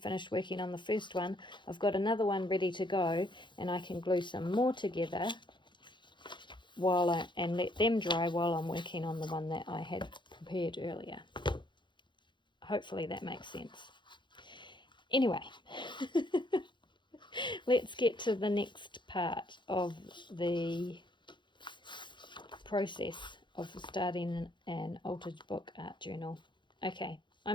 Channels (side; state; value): right; late; 0.23 ms